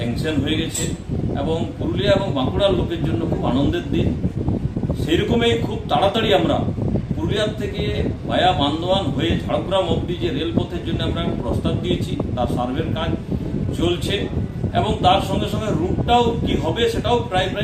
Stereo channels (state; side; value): identical; both; correlation 1.00